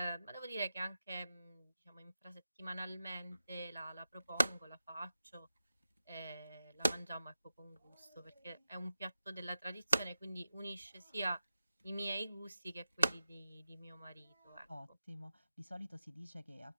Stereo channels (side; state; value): both; inverted; correlation -0.90